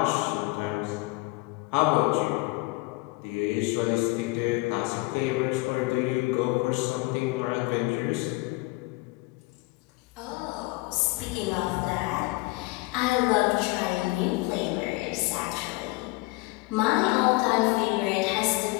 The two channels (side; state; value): right; quieter; 23.6 dB